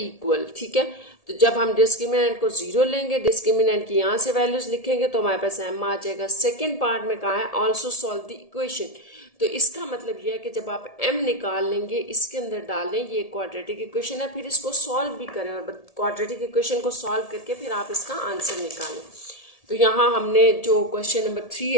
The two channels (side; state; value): right; late; 1.7 ms